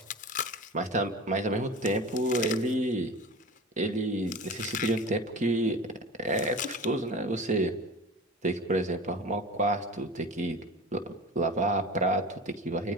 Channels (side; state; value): both; normal; correlation 0.34